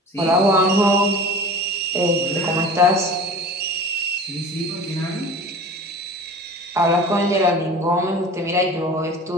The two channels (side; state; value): both; normal; correlation 0.39